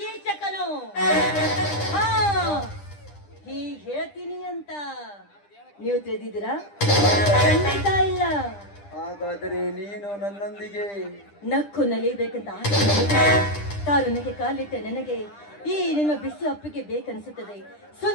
ಹಾ, ಹೀಗೆ ಹೇಳ್ತೀನಿ ಅಂತ ನೀವು ತಿಳಿದಿದ್ದೀರಾ? ಖಂಡಿತ ಇಲ್ಲ. ಹಾಗಾದರೆ ನೀನು ನನ್ನೊಂದಿಗೆ ನಕ್ಕು ನಲಿಬೇಕಂತ ಆಸೆ. ತಾರುಣ್ಯಕ್ಕೆ ಕಾಲಿಟ್ಟ ನನಗೆ ಈ ನಿನ್ನ ಬಿಸಿ ಅಪ್ಪಿಗೆ ಬೇಕನ್ಸುತ್ತದೆ.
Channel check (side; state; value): right; late; 10 ms